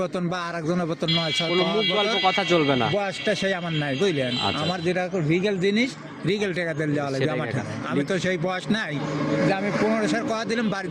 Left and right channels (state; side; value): identical; both; correlation 1.00